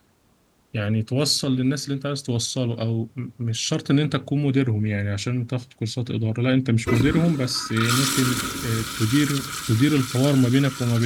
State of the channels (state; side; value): identical; both; correlation 1.00